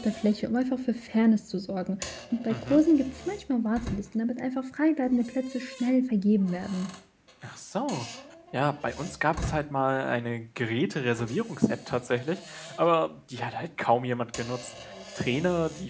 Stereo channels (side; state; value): both; identical; correlation 1.00